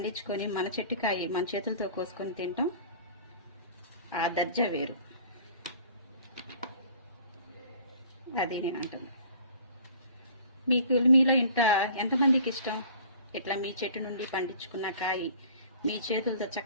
మన చెట్టుకాయ మన చేతులతో కోసుకొని తింటాం, ఆ దర్జా వేరు. అది నేను అంటాను. మీలో ఎంతమందికి ఇష్టం ఇట్లా మీ చెట్టు నుండి పండించుకున్న కాయ మీ చేతులతో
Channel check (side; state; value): both; inverted; correlation -0.48